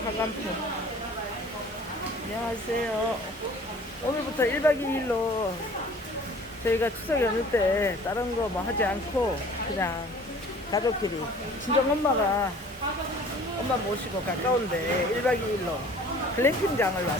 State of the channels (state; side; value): normal; both; correlation 0.49